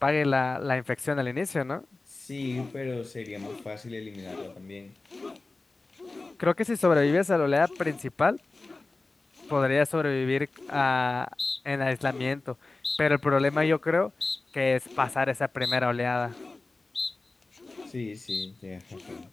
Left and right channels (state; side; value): quieter; right; 3.3 dB